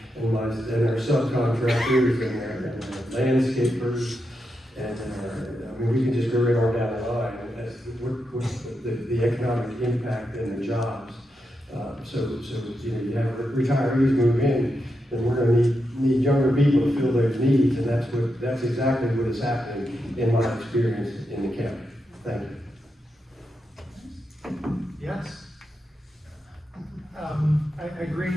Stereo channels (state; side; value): normal; both; correlation 0.86